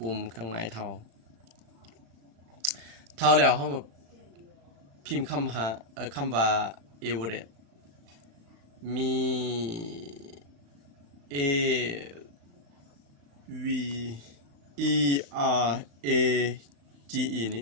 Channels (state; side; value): late; left; 35 ms